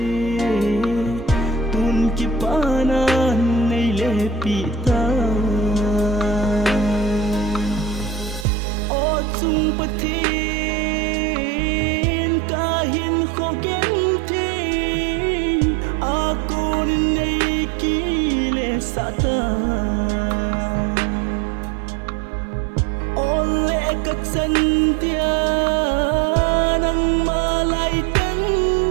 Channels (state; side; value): drops out; left; at 8.5 s